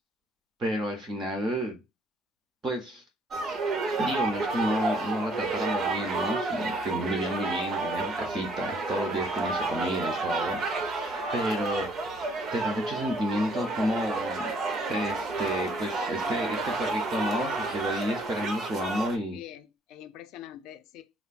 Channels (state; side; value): normal; both; correlation 0.64